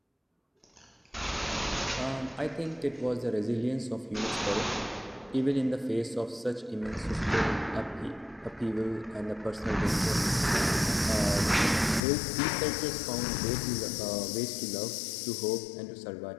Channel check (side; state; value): right; drops out; at 12.1 s